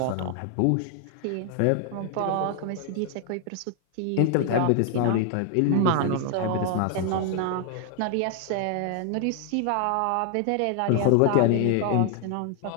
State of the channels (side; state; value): both; different; correlation 0.00